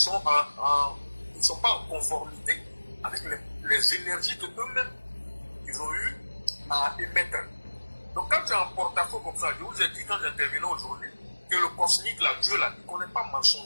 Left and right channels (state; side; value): inverted; both; correlation -1.00